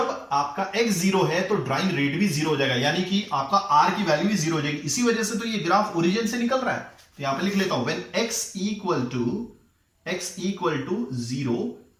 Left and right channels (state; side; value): identical; both; correlation 1.00